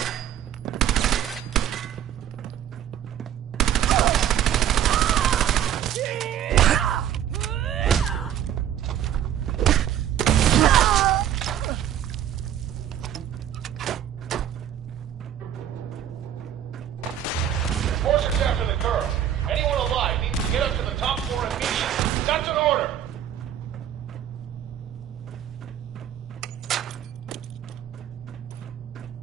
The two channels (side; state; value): left; quieter; 10.3 dB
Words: Enforcers after the curve. Anyone alive needs to get up to the top floor immediately. That's an order.